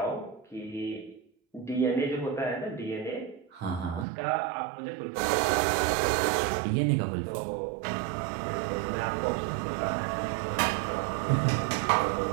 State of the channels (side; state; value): left; drops out; at 4.0 s